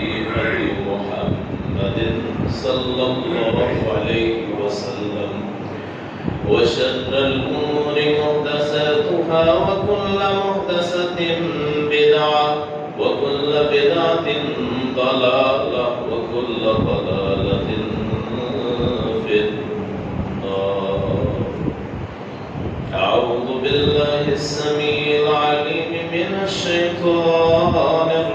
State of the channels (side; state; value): both; identical; correlation 1.00